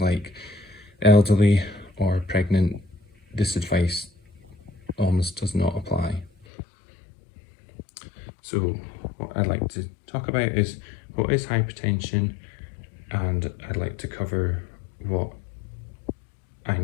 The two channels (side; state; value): right; drops out; at 6.5 s